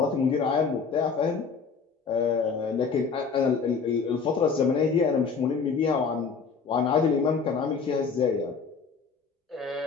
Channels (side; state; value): right; quieter; 5.4 dB